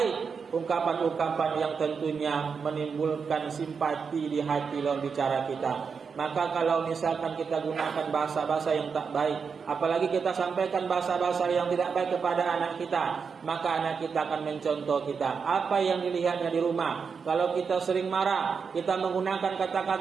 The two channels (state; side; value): quieter; left; 5.8 dB